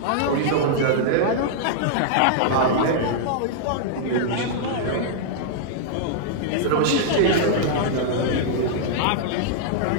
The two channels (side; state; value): both; different; correlation -0.01